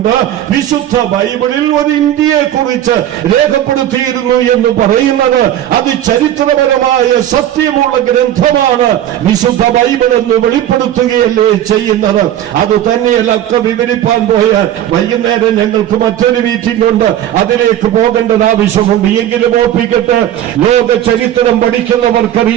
വിശുദ്ധ ബൈബിളിൽ ഒരു ഇന്ത്യയെ കുറിച്ച് രേഖപ്പെടുത്തിയിരുന്നു എന്ന് പറയുന്നത് അത് ചരിത്രപരമായ സത്യമുള്ള ഗ്രന്ഥമാണ്. വിശുദ്ധ ബൈബിൾ എന്ന് വെളിപ്പെടുത്തുകയല്ലേ ചെയ്യുന്നത്. അത് തന്നെയല്ല ഒക്കെ വിവരിപ്പാൻ പോയാൽ വൈകുന്നേരം ഞങ്ങൾക്ക് മറ്റൊരു മീറ്റിംഗ് ഉണ്ട്, അതിലേക്ക് പോകേണ്ടത് ആവശ്യമുണ്ട്. എങ്കിലും ഓർപ്പിക്കട്ടെ, ലോക ചരിത്രം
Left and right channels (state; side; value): quieter; left; 11.7 dB